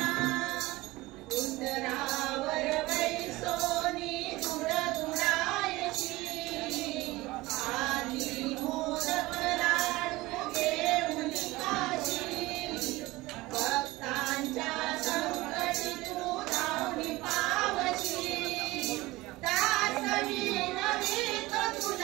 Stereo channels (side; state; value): left; quieter; 19.9 dB